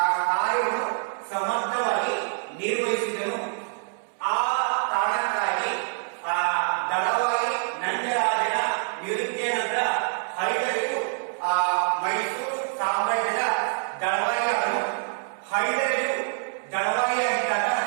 ಕಾರ್ಯವನ್ನು ಸಮರ್ಥವಾಗಿ ನಿರ್ವಹಿಸಿದನು. ಆ ಕಾರಣಕ್ಕಾಗಿ ದಳವಾಯಿ ನಂದರಾಜನ ನಿವೃತ್ತಿಯ ನಂತರ ಹೈದರಾಲಿಯು ಮೈಸೂರು ಸಾಮ್ರಾಜ್ಯದ ದಳವಾಯಿಯಾದನು. ಹೈದರಾಲಿಯು ದಳವಾಯಿಯಾಗಿದ್ದಾಗ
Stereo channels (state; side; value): silent; left; 61 dB below the other